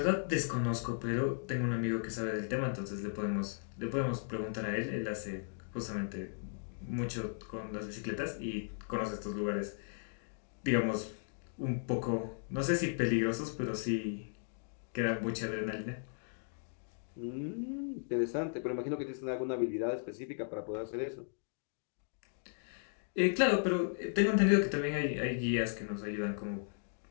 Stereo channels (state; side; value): silent; right; digital silence